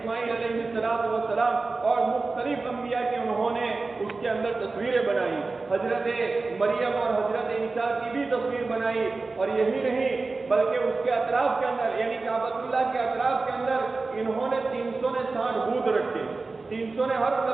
علیہ السلام اور مختلف انبیاء کی انہوں نے اس کے اندر تصویریں بنائی۔ حضرت مریم اور حضرت عیسیٰ کی بھی تصویر بنائی، اور یہی نہیں بلکہ اس کے اطراف کے اندر یعنی کعبۃ اللہ کے اطراف کے اندر انہوں نے 360 بت رکھے۔ 300 نے ہر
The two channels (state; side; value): quieter; left; 3.8 dB